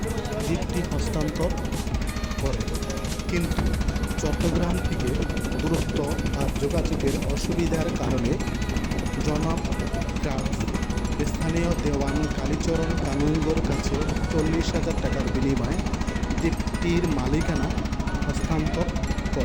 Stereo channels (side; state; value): both; identical; correlation 1.00